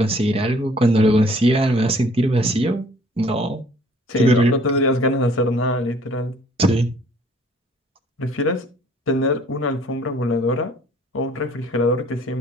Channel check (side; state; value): both; normal; correlation 0.57